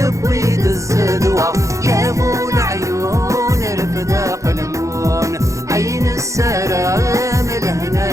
الزدوة يا ابو العيون رفداق المون عين السلام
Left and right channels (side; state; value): left; late; 0.15 ms